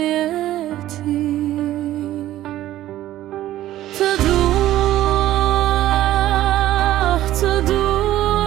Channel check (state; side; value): quieter; left; 13.9 dB